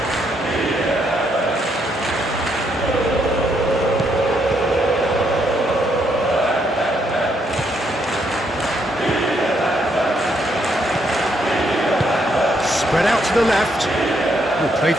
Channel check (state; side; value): normal; both; correlation 0.74